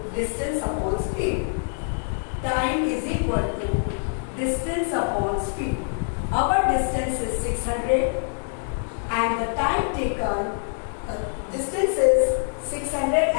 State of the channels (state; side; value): silent; right; 62 dB below the other